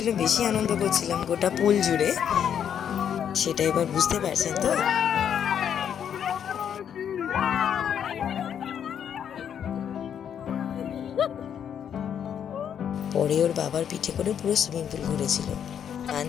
বেশি আনন্দ করছিলাম গোটা পুল জুড়ে, সেটা এবার বুঝতে পারছেন তো? পরে ওর বাবার পিঠে করে পুরো সুইমিং পুল ঘুরেছিল। গান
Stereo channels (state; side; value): quieter; right; 8.7 dB